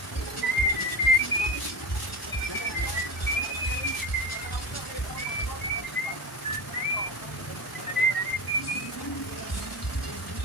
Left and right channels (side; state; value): both; normal; correlation 0.26